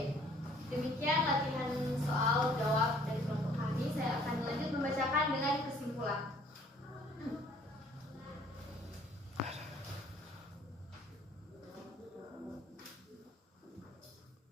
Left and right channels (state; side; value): normal; both; correlation 0.57